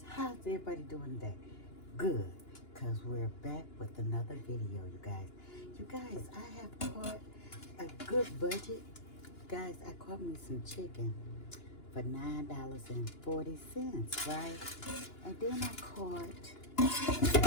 how's everybody doing today? Good, because we're back with another video, you guys. You guys, I have caught a good budget. Guys, I caught me some chicken for $9.40, right? And then I caught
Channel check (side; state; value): right; late; 2.9 ms